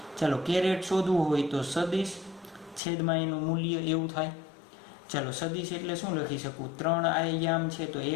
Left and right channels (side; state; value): right; drops out; at 2.8 s